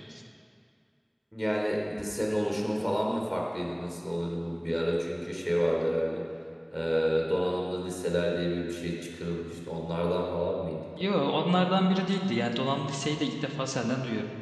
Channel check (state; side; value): identical; both; correlation 1.00